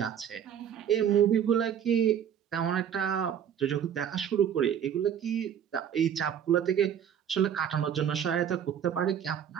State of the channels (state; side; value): quieter; left; 9.0 dB